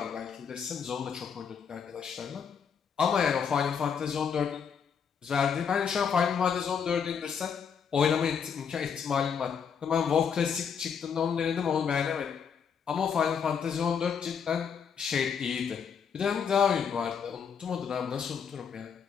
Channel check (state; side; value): quieter; right; 7.0 dB